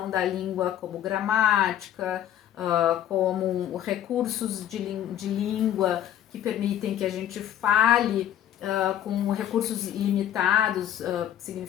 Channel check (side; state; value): right; quieter; 11.1 dB